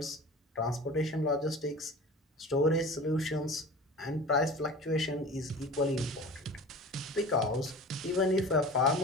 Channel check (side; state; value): both; normal; correlation 0.38